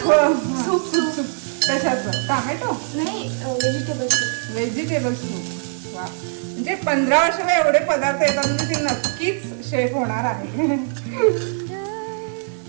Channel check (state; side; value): silent; left; digital silence